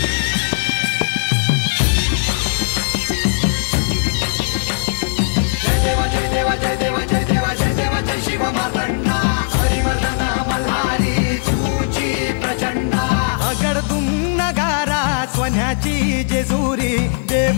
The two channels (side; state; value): right; silent; digital silence